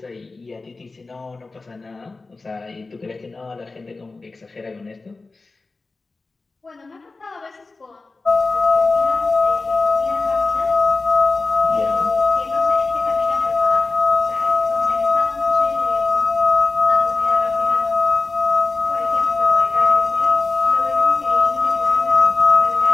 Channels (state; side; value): quieter; right; 3.6 dB